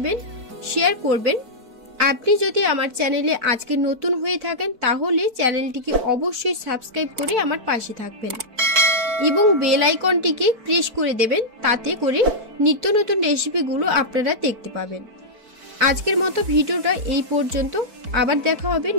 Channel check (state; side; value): late; left; 4.5 ms